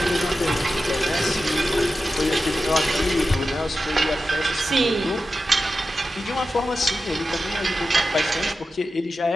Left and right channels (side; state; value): both; normal; correlation 0.92